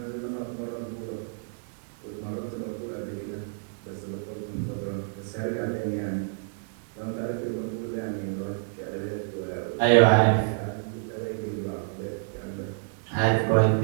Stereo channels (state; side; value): silent; left; digital silence